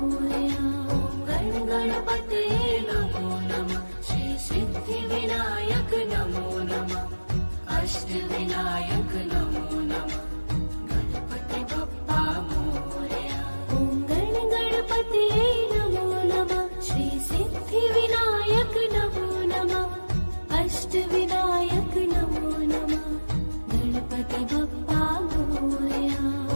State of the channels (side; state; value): both; inverted; correlation -1.00